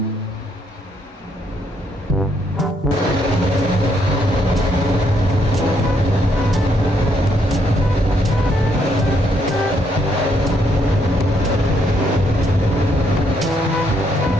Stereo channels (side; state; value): both; normal; correlation 0.73